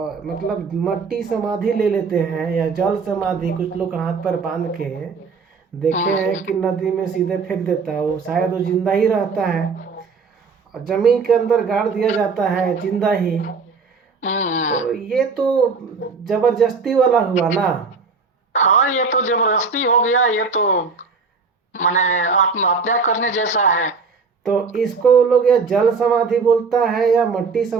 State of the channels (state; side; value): quieter; left; 4.8 dB